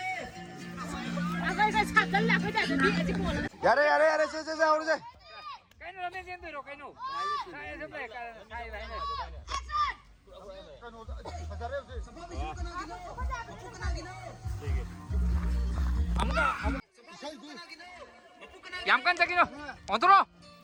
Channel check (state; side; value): identical; both; correlation 1.00